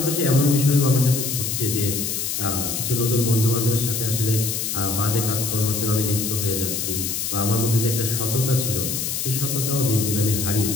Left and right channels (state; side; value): noise; left; hiss, 2 dB below the sound